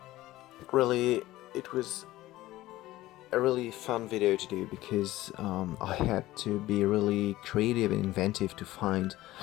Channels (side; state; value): right; quieter; 16.6 dB